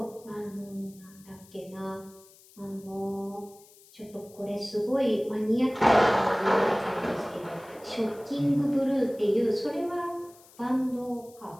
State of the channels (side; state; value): left; noise; hiss, 25 dB below the sound